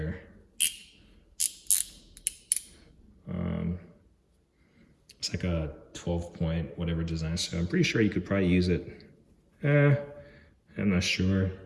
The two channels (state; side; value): identical; both; correlation 1.00